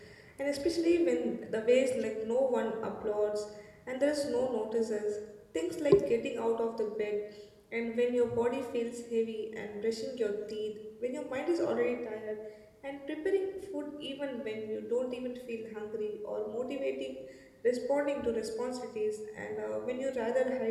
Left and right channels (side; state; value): both; identical; correlation 1.00